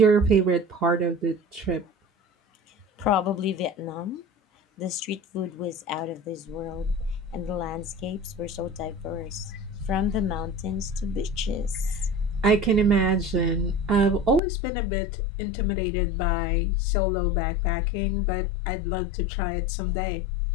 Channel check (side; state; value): right; drops out; at 14.4 s